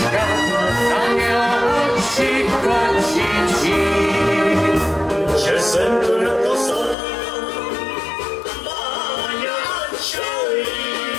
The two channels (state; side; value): drops out; right; at 7.0 s